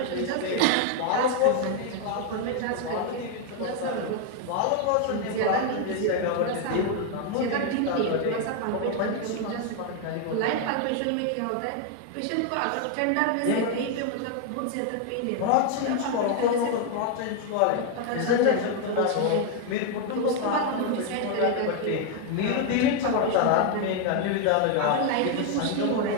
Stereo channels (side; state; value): both; different; correlation 0.01